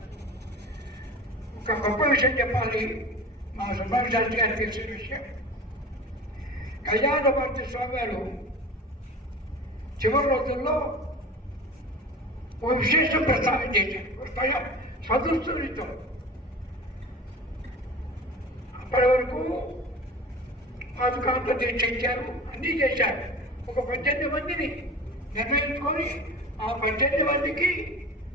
ఒక గొప్ప విషయం చెప్పాలి. మా సుబ్రహ్మణ్య శాస్త్రి గారు తెలిసిన విషయం. కళ్యాణభారతి స్వామి గారు చివరి రోజుల్లో ఓ విశేషం ప్రస్తావన చేశారు. స్వదృష్టితో అప్పటి వరకు పాదుకాంత దీక్ష ఇచ్చారు, అన్నీ చేశారు. ఒక 18 మందిని నిర్ణయించుకొని ఆ 18 మందికి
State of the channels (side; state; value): both; normal; correlation 0.35